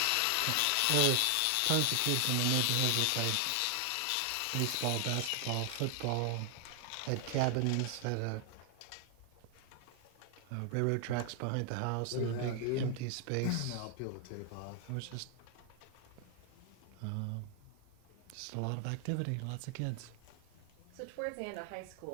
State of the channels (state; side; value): different; both; correlation 0.00